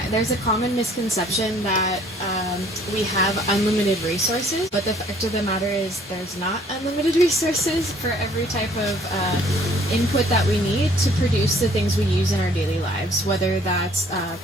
there's a common misconception that we have unlimited resources, but the fact of the matter is there's not unlimited resources for every type of input that we need to produce the things we use in our daily lives, whether that's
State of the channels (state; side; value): normal; both; correlation 0.59